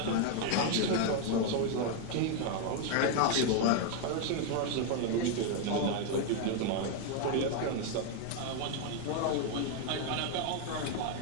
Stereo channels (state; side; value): different; both; correlation 0.01